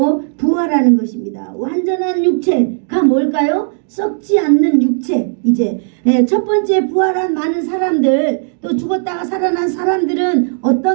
부활하는 것입니다. 완전한 육체가 뭘까요? 썩지 않는 육체. 이제 첫 번째 부활한 많은 사람들, 또 죽었다가 살아난 사람들은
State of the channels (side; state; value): left; silent; digital silence